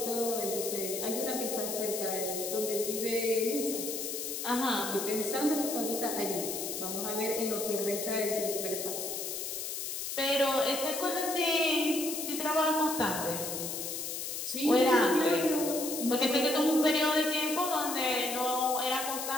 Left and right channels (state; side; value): noise; left; hiss, 4 dB below the sound